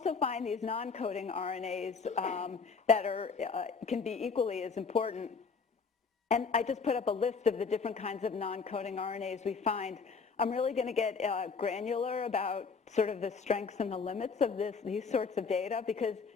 find these non-coding RNAs that can be equally as important. And I just put up a list of the different kinds of non-coding RNAs we find. I'm really going to get granular about sort of the strengths and the limits of these sorts of data, because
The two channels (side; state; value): right; quieter; 5.1 dB